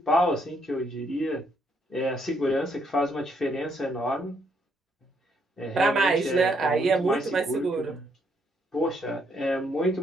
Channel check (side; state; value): both; normal; correlation 0.72